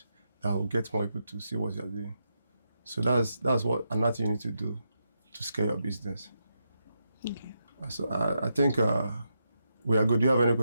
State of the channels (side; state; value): both; inverted; correlation -0.84